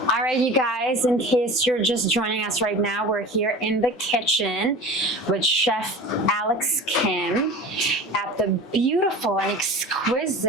All right, you guys, in case you're just joining us right now, we're here in the kitchen with Chef Alex Kim at the beautiful and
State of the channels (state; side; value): normal; both; correlation 0.36